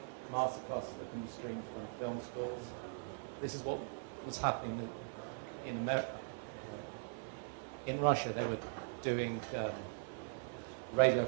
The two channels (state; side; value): silent; left; 51 dB below the other